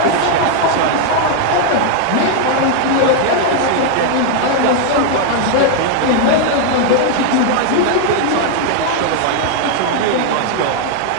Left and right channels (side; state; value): both; different; correlation 0.00